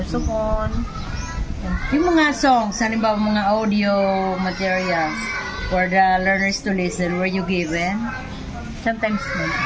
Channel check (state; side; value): identical; both; correlation 1.00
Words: Yung mga songs, halimbawa mga audio materials for the learners to listen, were you given? Sometimes no.